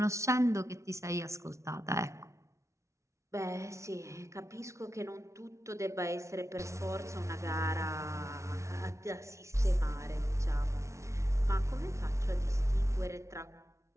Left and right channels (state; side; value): late; left; 0.14 ms